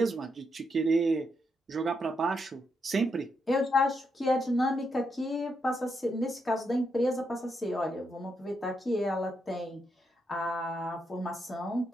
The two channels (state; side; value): normal; both; correlation 0.81